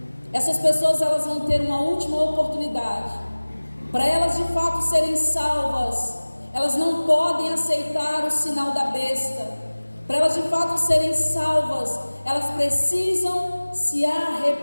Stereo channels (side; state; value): both; inverted; correlation -1.00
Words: Essas pessoas, elas vão ter uma última oportunidade. Para elas de fato serem salvas, elas não podem aceitar o sinal da besta. Para elas de fato serem salvas, elas precisam se